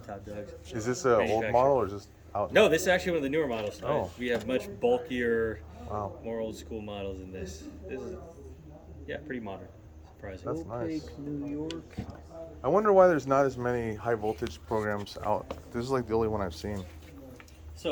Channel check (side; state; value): both; identical; correlation 1.00